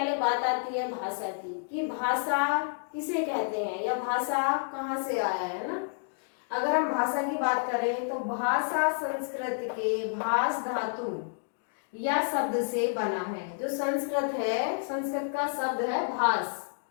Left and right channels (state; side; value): silent; right; digital silence